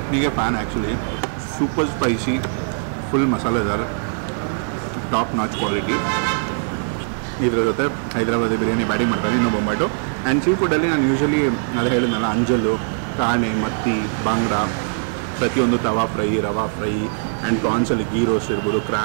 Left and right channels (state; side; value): silent; left; digital silence